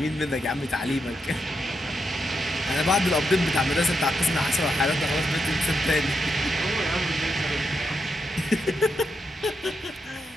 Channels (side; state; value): both; normal; correlation 0.83